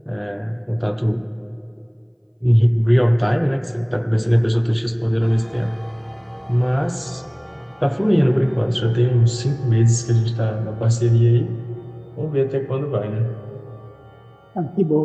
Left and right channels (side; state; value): both; identical; correlation 1.00